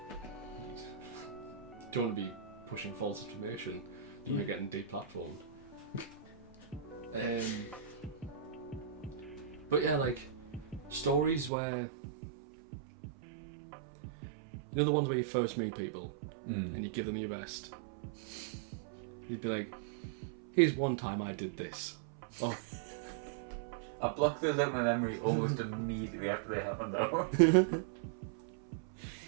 Don't want to be pushing false information when you're getting deplatformed. But yeah, like stories where you know the ones where you first meet people and you give them your best. You'd be like, "Here's one time I did this." Oh, I blocked those out of my memory almost immediately after they happened, though.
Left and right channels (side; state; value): left; drops out; at 11.5 s